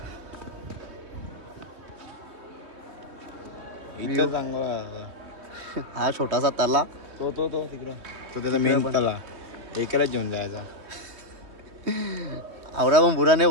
इथं चांगला हा छोटासा तला. तो तिकडं तो त्याचा मेन तला एकालाच घेऊन जायचा. आवरा पण बुरा नाही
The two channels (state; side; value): late; left; 3.2 ms